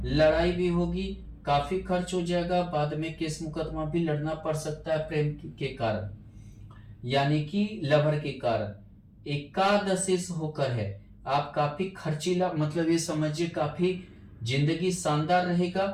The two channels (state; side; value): identical; both; correlation 1.00